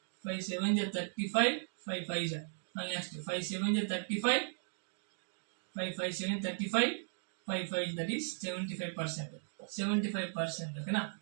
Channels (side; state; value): left; silent; digital silence